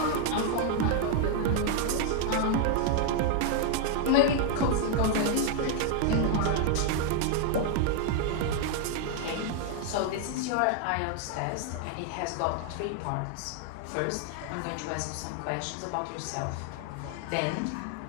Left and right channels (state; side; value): different; both; correlation 0.00